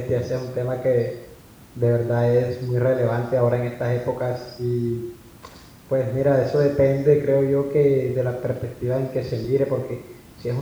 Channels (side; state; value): both; identical; correlation 1.00